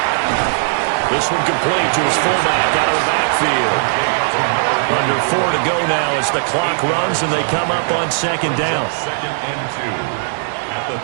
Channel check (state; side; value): silent; left; digital silence